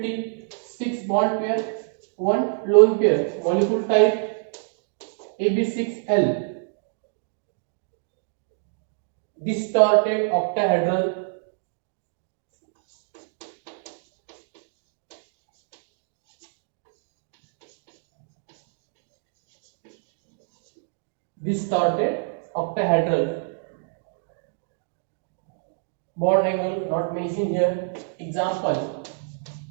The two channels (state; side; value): silent; left; digital silence